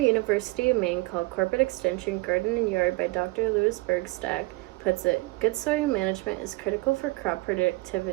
University of Maine called Corporate Extension Garden and Yard by Dr. Louis Bergstad puts it, good soil management is critical for crop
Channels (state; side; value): quieter; left; 22.5 dB